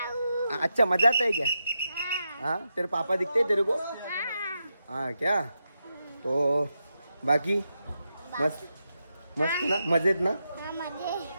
अच्छा मजा आता है क्या? हाँ, तेरे पापा दिखते हैं तेरे को? हाँ क्या? तो बाकी मस्त मस्त ना, मजेत ना?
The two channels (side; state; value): both; inverted; correlation -0.87